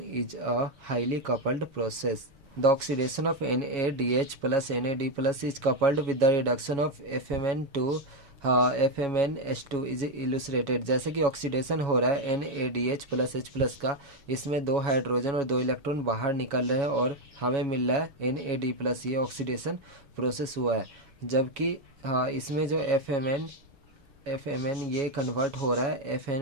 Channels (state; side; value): late; left; 7.2 ms